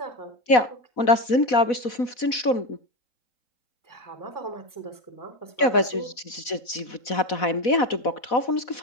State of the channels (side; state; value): right; late; 4.1 ms